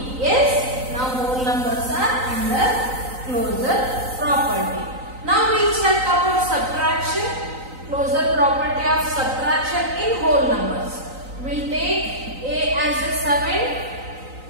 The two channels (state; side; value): late; left; 3.9 ms